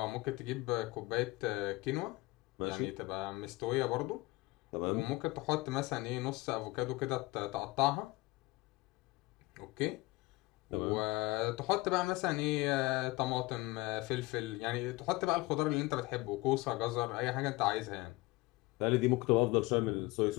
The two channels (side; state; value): right; quieter; 21.2 dB